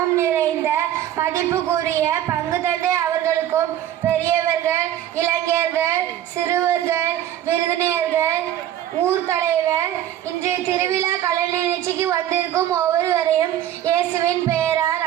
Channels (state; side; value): quieter; left; 11.7 dB